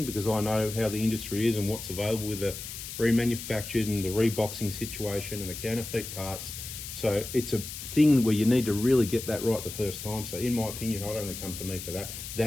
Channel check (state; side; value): noise; left; hiss, 9 dB below the sound